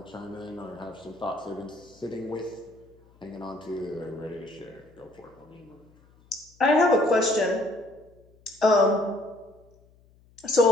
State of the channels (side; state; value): left; noise; hum, 29 dB below the sound